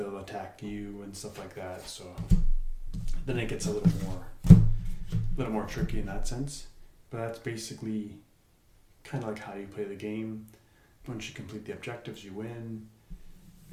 attack you and stuff like that. So then it gets a little more tricky in that sense. But that's basically kind of like how you play the game. Once you complete the objectives, you win.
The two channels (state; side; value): identical; both; correlation 1.00